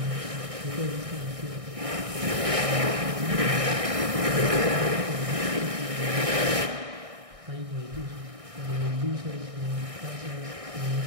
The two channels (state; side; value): late; left; 1.6 ms